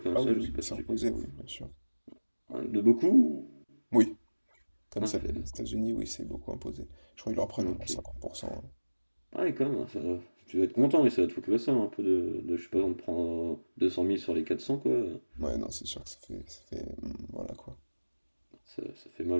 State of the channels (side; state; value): both; inverted; correlation -1.00